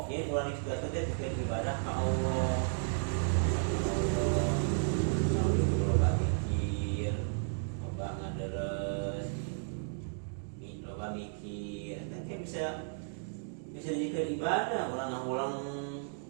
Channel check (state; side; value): silent; left; digital silence